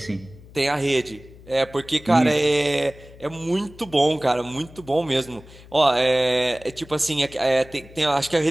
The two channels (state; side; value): noise; left; hum, 21 dB below the sound